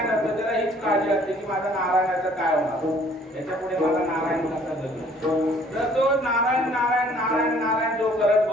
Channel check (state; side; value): normal; both; correlation 0.58